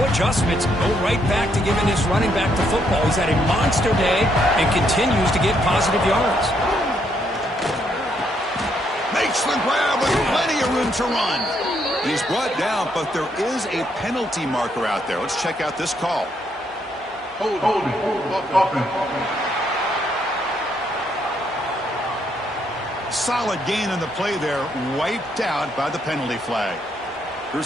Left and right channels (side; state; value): both; normal; correlation 0.74